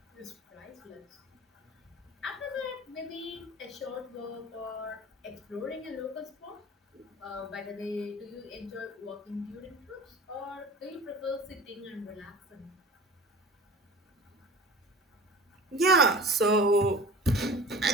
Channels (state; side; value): normal; both; correlation 0.40